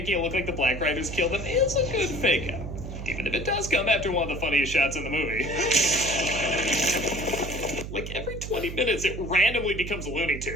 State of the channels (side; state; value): right; noise; hum, 8 dB below the sound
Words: it look like the Black Riders killed them is a good fake-out. Even if it does come after one of the funniest shots in the movie. Like, every 20 minutes, it randomly becomes Looney